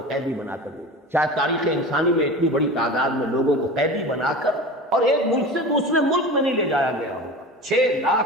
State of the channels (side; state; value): both; normal; correlation 0.32